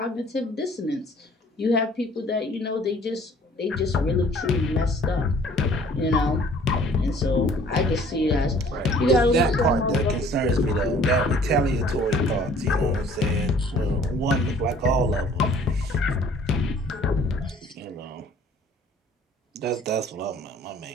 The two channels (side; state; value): both; normal; correlation 0.54